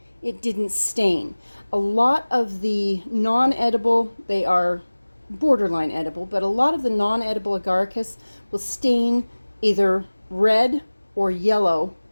it didn't stain. A lot of the non-edible, they are borderline edible, but a lot of the non-edible agaricus will stain either red or yellow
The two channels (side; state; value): both; inverted; correlation -1.00